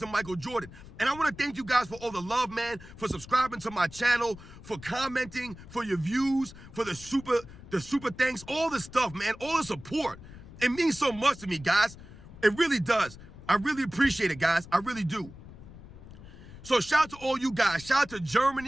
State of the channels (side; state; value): left; noise; rumble, 17 dB below the sound